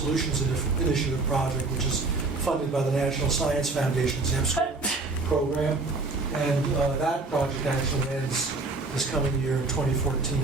Initiative project, which is funded by the National Science Foundation's MSchool program. And that project actually ends this coming year in 2014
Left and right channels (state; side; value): quieter; left; 3.5 dB